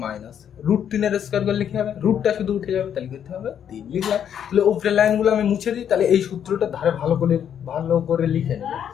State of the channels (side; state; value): right; quieter; 9.0 dB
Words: মাইনাস, √3 এর স্কোয়ার করলে কি হবে? রুটটা শুধু উঠে যাবে, তাহলে করতে হবে 3 লিখলাম। তাহলে উপরের লাইনগুলো আমি মুছে দিই, তাহলে এই সূত্রটা ধারে ভালো করে লিখে নেব।